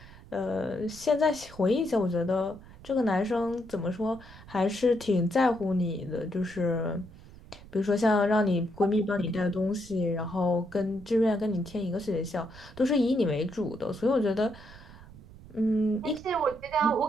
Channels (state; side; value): noise; right; rumble, 19 dB below the sound